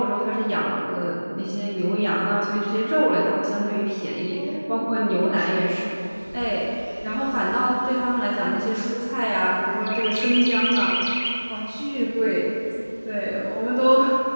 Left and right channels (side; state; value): both; inverted; correlation -1.00